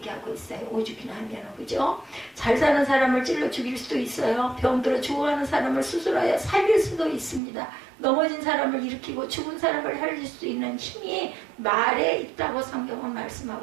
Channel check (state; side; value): drops out; left; at 7.4 s